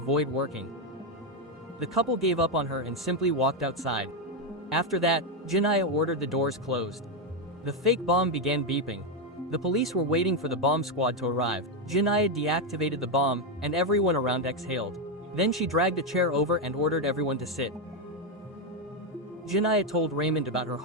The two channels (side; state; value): both; normal; correlation 0.05